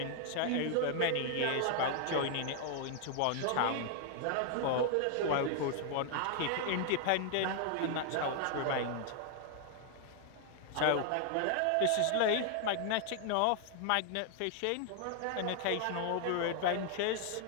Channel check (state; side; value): different; both; correlation 0.00